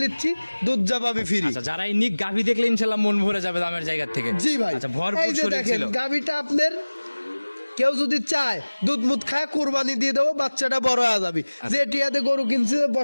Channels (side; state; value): both; inverted; correlation -1.00